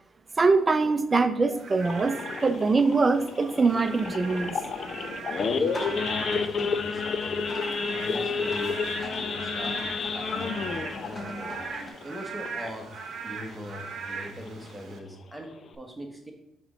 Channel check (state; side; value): normal; both; correlation 0.83